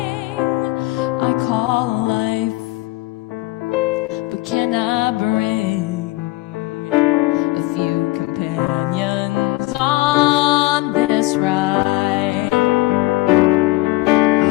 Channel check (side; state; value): right; quieter; 20.2 dB